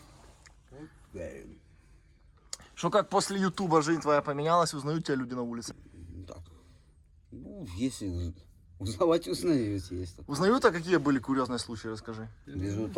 Что, как после Ютуба жизнь твоя поменялась, узнают тебя люди на улице? Так. Ну, если узнавать узнаете, есть. Узнают, а какие были курьезные случаи, расскажи. Везу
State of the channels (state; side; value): identical; both; correlation 1.00